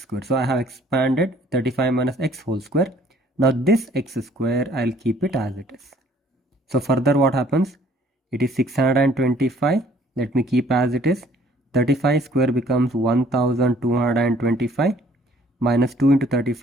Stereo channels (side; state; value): both; normal; correlation 0.59